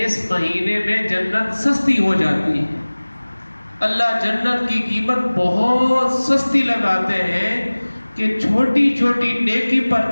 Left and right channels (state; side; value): inverted; both; correlation -1.00